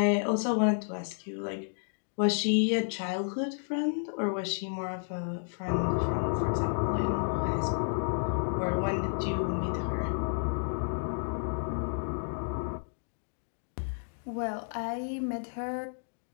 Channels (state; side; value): silent; right; digital silence